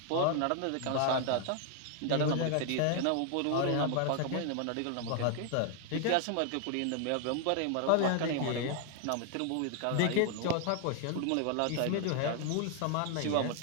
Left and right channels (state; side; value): different; both; correlation 0.00